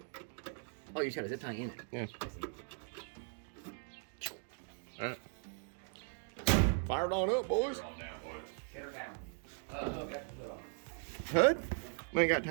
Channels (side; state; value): left; silent; 52 dB below the other